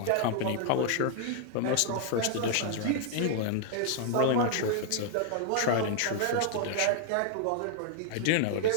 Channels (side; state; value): both; different; correlation -0.01